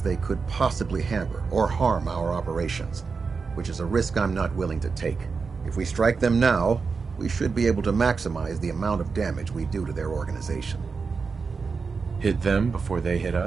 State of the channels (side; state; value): left; quieter; 5.0 dB